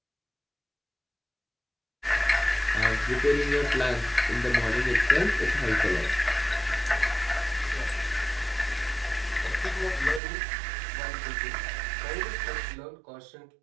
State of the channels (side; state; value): left; drops out; at 10.2 s